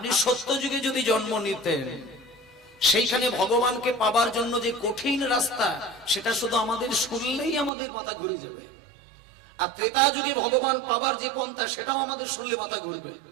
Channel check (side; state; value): left; drops out; at 7.7 s